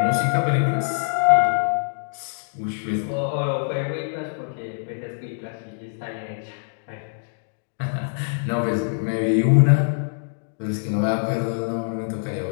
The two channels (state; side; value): silent; right; digital silence